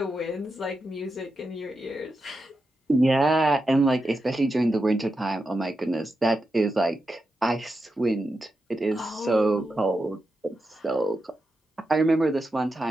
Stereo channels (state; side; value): normal; both; correlation 0.88